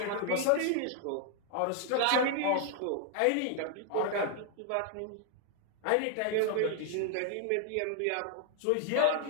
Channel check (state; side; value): different; both; correlation 0.00